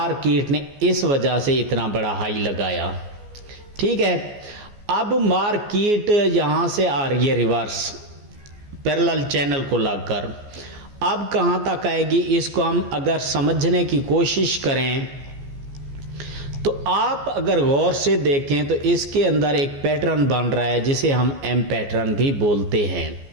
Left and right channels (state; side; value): late; left; 14 ms